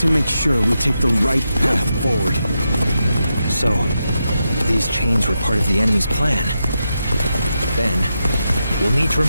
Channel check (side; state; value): both; inverted; correlation -0.86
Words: make sure we take the right path forward. So, these chains were part of the enemy's plan. Then, we'll need to